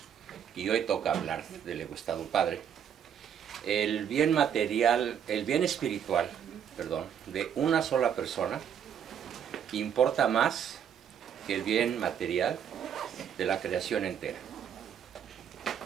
y hoy toca hablar del egoístado padre, el bien material, el bien espiritual, perdón, de una sola persona importa más que el bien material de la creación entera.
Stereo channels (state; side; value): quieter; left; 8.6 dB